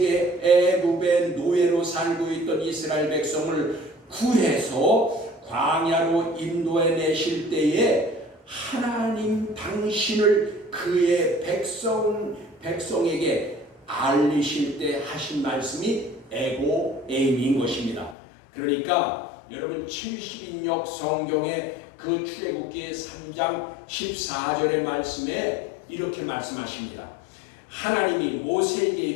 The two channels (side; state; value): right; drops out; at 18.2 s